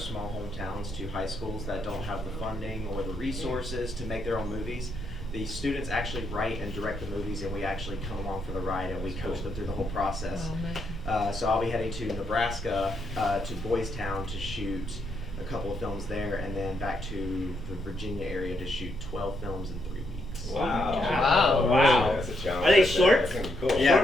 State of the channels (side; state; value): left; noise; hum, 26 dB below the sound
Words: hometowns, to high schools that don't have the funding or the resources to make their own movies. The students actually write and direct the movies, and we actually come along for the ride and we coach them through the whole process. So I'll be heading to Nebraska, to Boys Town to shoot a couple of films there, and then back to the Virginia area to shoot 12 films in 3 weeks. Wow. That's a challenge. Are they That's shorts? gonna be cool. Yeah,